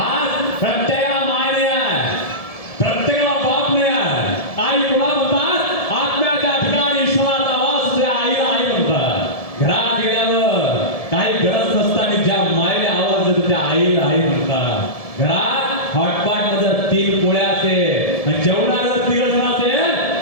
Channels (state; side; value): late; right; 1.7 ms